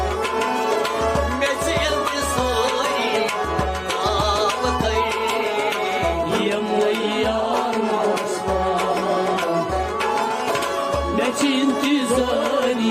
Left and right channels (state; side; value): identical; both; correlation 1.00